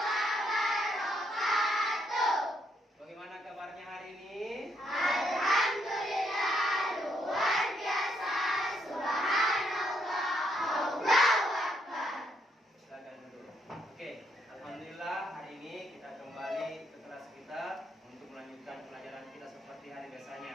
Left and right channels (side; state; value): both; normal; correlation 0.74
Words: Bagaimana kabarnya hari ini? Alhamdulillah, luar biasa. Subhanallah, Allahu Akbar. Silakan dulu. Oke, alhamdulillah hari ini kita kembali ke kelas kita untuk melanjutkan pelajaran kita seperti hari